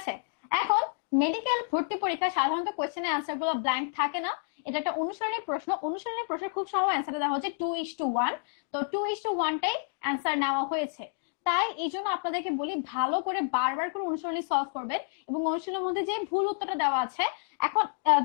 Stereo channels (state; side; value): silent; right; digital silence